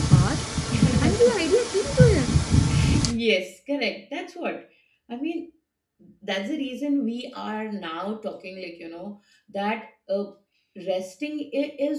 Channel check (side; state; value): both; identical; correlation 1.00